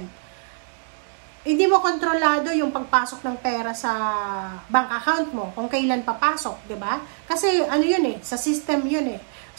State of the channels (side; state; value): left; silent; digital silence